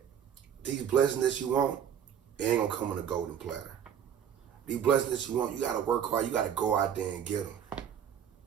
these blessings that you want, it ain't gonna come on a golden platter. These blessings that you want, you gotta work hard. You gotta go out there and get them.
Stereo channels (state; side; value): quieter; left; 8.6 dB